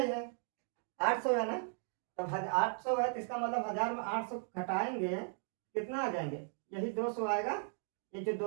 है, 800 है ना, तब 800 है, तो इसका मतलब 1000 में 800 घटाएंगे कितना आ जाएंगे, यही 200 आएगा, ये जो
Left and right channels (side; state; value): left; silent; 53 dB below the other